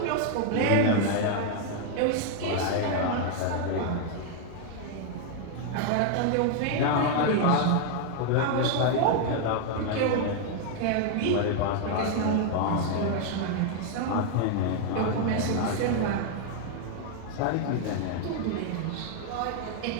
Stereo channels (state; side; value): different; both; correlation 0.00